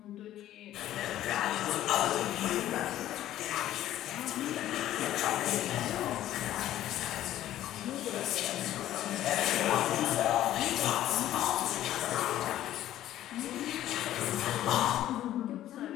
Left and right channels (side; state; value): right; quieter; 13.0 dB